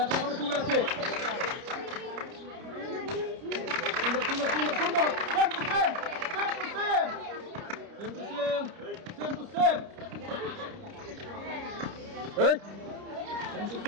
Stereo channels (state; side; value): late; left; 30 ms